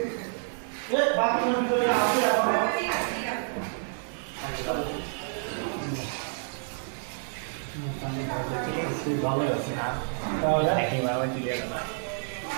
বাথরুমের ভিতরে আছে ভালো আছে। তাহলে একেবারে আমার ক্লিয়ার না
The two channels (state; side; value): silent; left; digital silence